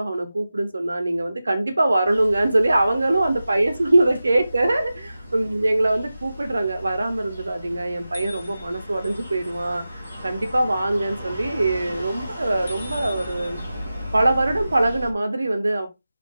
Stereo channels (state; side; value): inverted; both; correlation -0.94